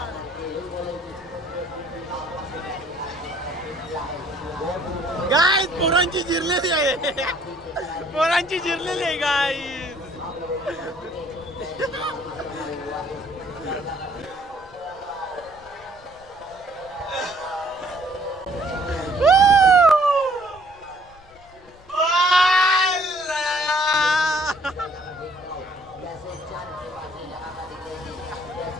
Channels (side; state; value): left; noise; rumble, 26 dB below the sound